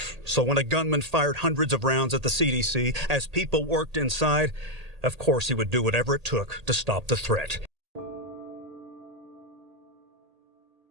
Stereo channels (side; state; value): left; late; 1.8 ms